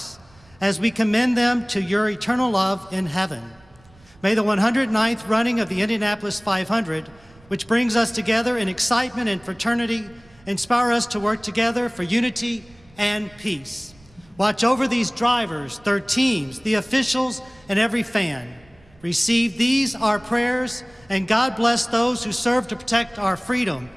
as we commend them to your eternal love in heaven. May the 109th running of the Indianapolis 500, which brings us together in excitement and fraternity, inspire us to work together for unity and peace. Watch over these drivers, their teams, the officials, and every fan. Receive these, our prayers, and God bless those who serve to protect our freedom.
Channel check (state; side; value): noise; right; rumble, 28 dB below the sound